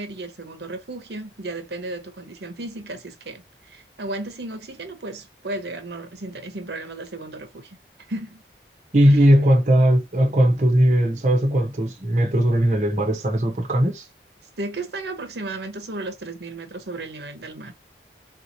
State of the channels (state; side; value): normal; both; correlation 0.85